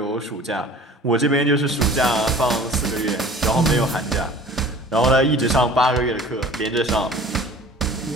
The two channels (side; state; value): both; normal; correlation 0.45